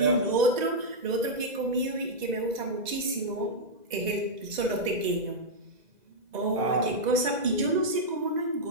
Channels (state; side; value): late; left; 2.0 ms